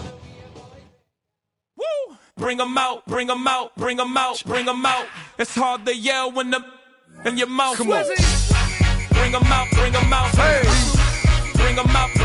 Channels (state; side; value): identical; both; correlation 1.00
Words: Bring them out, bring them out, bring them out, bring them out. It's hard to yell when the in your mouth. Come on. Bring them out, bring them out. Hey. Bring them out,